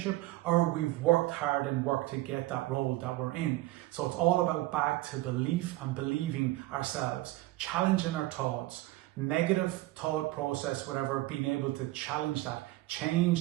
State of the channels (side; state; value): left; quieter; 17.8 dB